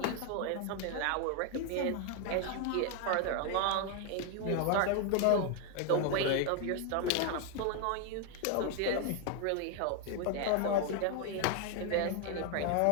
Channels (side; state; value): both; different; correlation 0.01